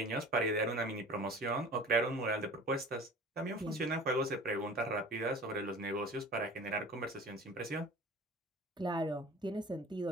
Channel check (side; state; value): both; normal; correlation 0.42